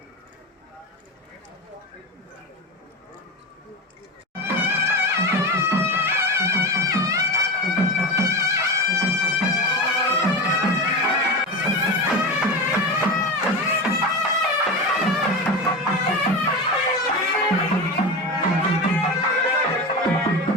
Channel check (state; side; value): normal; both; correlation 0.23